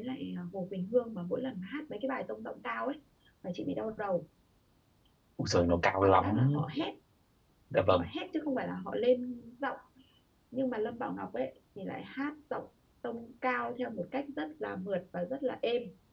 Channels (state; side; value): identical; both; correlation 1.00